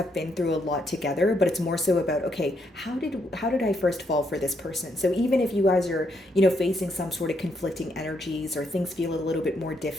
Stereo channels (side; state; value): both; normal; correlation 0.76